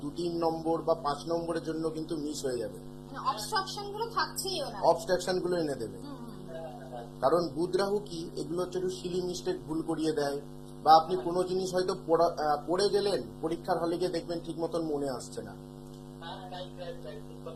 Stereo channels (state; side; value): identical; both; correlation 1.00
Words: 2-3 নম্বর বা 5 নম্বরের জন্য কিন্তু মিস হয়ে যাবে। মানে অবস্ট্রাকশন গুলো থাকছেই ওনার। অবস্ট্রাকশন গুলো এনে দেবে। কারণ বুধ রাহু কি, এগুলো হচ্ছে একটু সিলি মিস্টেক, ভুল করিয়ে দেয়। বা আপনি কোনো জিনিস হয়তো পড়ে গেলেন, পরীক্ষার হলে গিয়ে দেখবেন ঠিক মতন মনে আসছে না। হ্যাঁ, রাইট রাইট রাইট, ঠিক